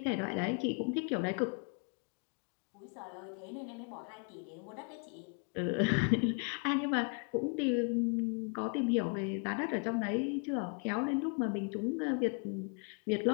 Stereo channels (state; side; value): quieter; right; 37.1 dB